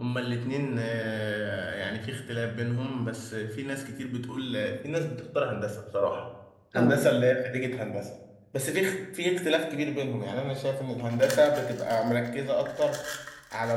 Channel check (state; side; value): identical; both; correlation 1.00